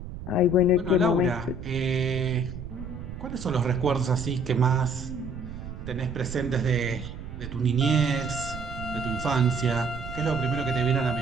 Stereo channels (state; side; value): noise; right; rumble, 10 dB below the sound